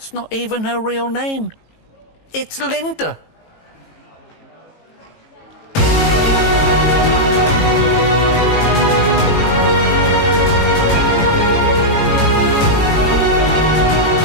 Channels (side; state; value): right; late; 18 ms